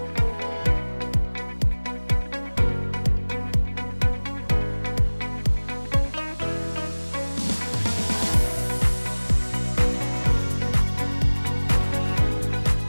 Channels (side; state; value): both; inverted; correlation -1.00